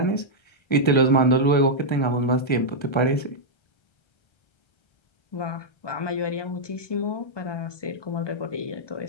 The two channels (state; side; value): late; right; 1.3 ms